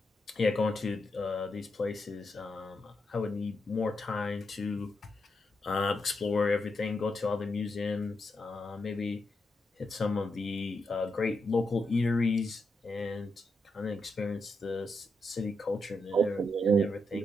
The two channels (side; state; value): both; normal; correlation 0.83